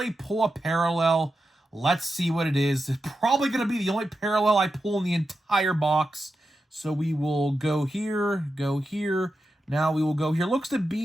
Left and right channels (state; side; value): normal; both; correlation 0.89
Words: pull a parallel. Let's see what it is. It's probably going to be the only parallel I pull in the entire box. So we will go here, go here. Now we will go here. Looks to